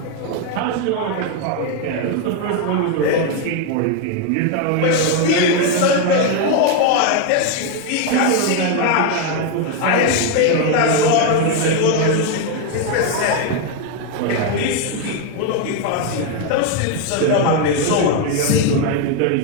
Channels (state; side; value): different; both; correlation 0.01